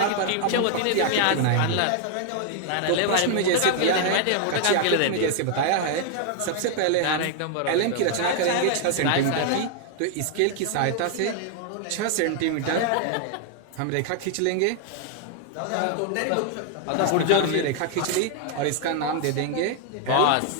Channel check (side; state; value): both; different; correlation 0.00